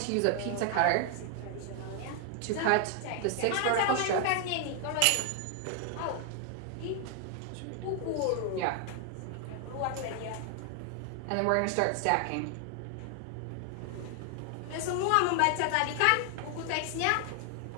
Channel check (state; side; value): different; both; correlation 0.00